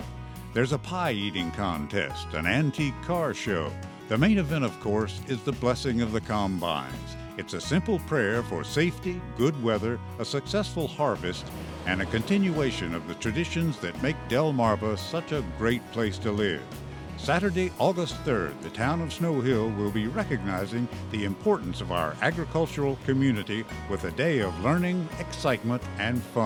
There's a pie-eating contest, an antique car show. The main event, of course, is the Blessing of the Combines. It's a simple prayer for safety, good weather, a successful harvest, and a continuation of the traditions that make Delmarva such a great place to live. Saturday, August 3rd, the town of Snow Hill will be recognizing the importance of our agricultural community with a day of learning, excitement, and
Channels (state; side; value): identical; both; correlation 1.00